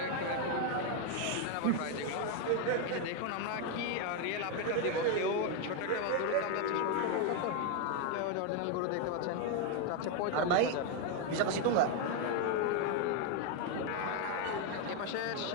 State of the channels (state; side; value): different; both; correlation 0.01